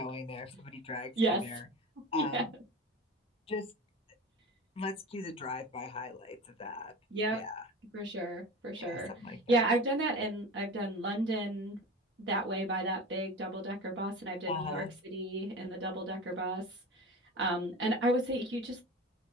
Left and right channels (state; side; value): normal; both; correlation 0.32